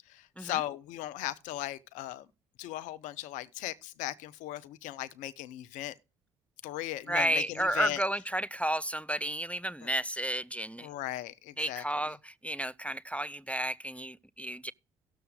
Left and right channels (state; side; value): normal; both; correlation 0.52